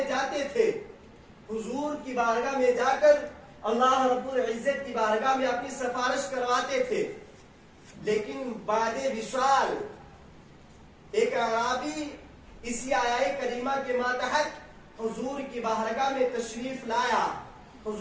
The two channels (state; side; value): identical; both; correlation 1.00